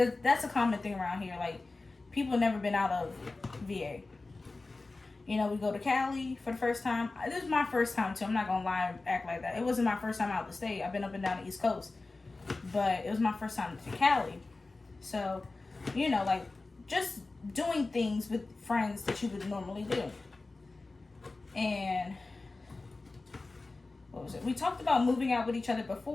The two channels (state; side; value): quieter; right; 3.4 dB